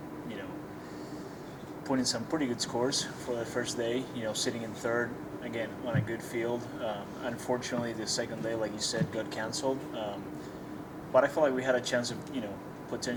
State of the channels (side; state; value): both; identical; correlation 1.00